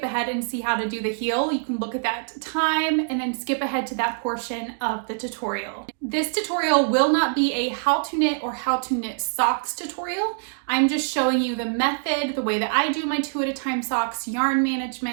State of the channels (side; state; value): left; silent; digital silence